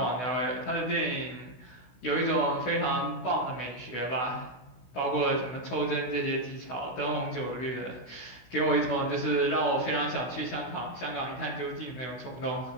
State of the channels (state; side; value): late; right; 16 ms